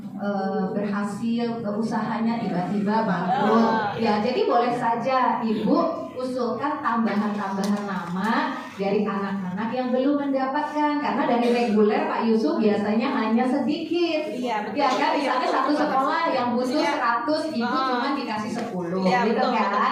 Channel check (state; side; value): identical; both; correlation 1.00